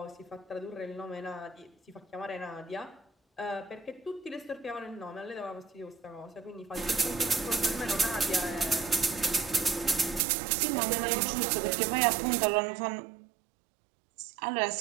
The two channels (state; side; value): drops out; left; at 10.2 s